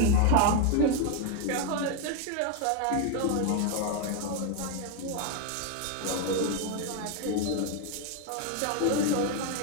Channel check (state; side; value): different; both; correlation 0.01